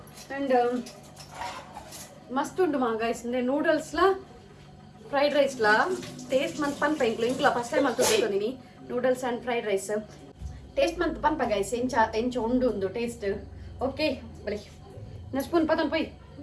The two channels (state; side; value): identical; both; correlation 1.00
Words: ಅಂಡ್ ಮಸ್ತ್ ಉಂಡು ಮಾ ಗೈಸ್ ಅಂದ್ರೆ ನೂಡಲ್ಸ್ಲ ಫ್ರೈಡ್ ರೈಸ್ಲ ಟೇಸ್ಟ್ ಮಂತ್ ಪನ್ಪ ಇಂಕ್ಲ ಫಸ್ಟ್ ಟೈಮ್ ಅಂತ ತೊಗೊಂಡಿನಿ noodles and fried rice taste ಮಂತ್ ಪನ್ಪ ಗೈಸ್ ಎಂಚ ಉಂಡು ಒಂದು ಟೇಸ್ಟ್ ಓಕೆ ಬಲಿ ನಾ ಸ್ಪೂನ್ ಪದನ್ ಪೊಯ್